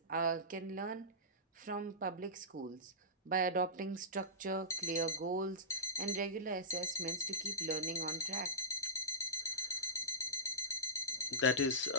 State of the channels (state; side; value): normal; both; correlation -0.17